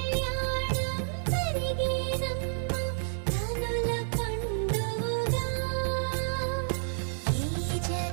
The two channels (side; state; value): left; silent; digital silence